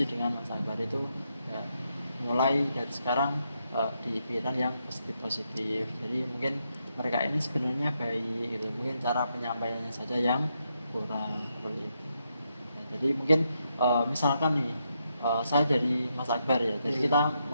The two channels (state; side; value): inverted; both; correlation -0.81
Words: dengan Mas Akbar. Itu ya, mulai dari sekarang dipikiran yang positif. Jadi mungkin mereka ini sebenarnya baik gitu, mungkin cara penyampaiannya saja yang kurang, seperti itu. Ya, jadi mungkin misalkan nih saya jadi Mas Akbar ya, jadi kita